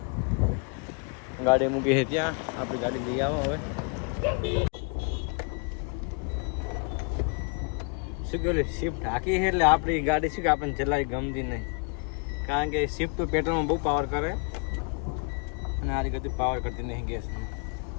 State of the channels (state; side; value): quieter; right; 31.8 dB